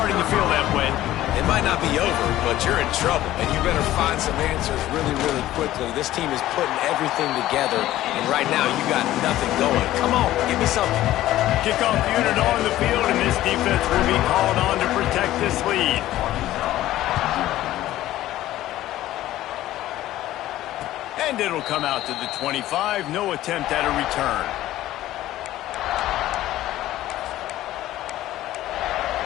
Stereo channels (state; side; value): quieter; right; 14.6 dB